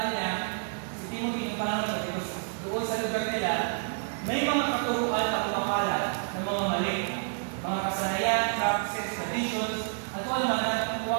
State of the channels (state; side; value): silent; left; 56 dB below the other